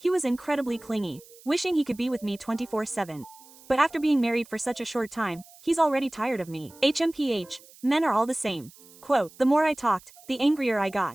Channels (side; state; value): right; noise; hiss, 23 dB below the sound